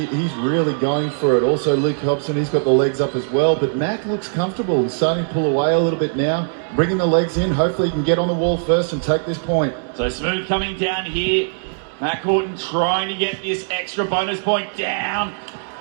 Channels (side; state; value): left; silent; digital silence